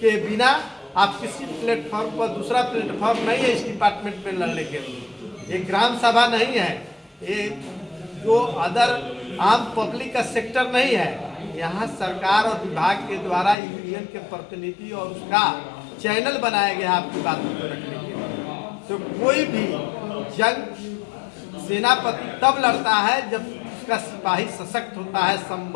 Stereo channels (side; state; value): right; drops out; at 13.6 s